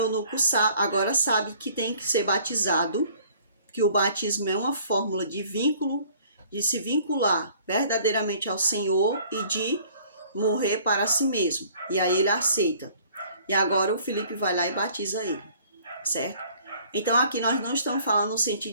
agora sabe que tem que ser batizado, que o batismo é uma fórmula de vínculo, de se vincular verdadeiramente ao Senhor e de morrer para si mesmo. E aí ele aceita. E agora o Filipe vai lá e batiza ele, certo? Então aqui nós não estamos falando no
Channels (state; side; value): inverted; both; correlation -0.55